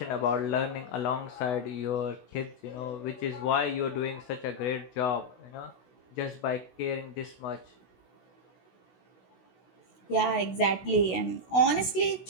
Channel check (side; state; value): right; late; 16 ms